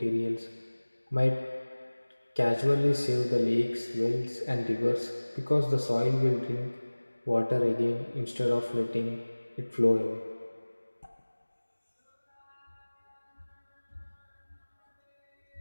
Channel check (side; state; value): both; inverted; correlation -1.00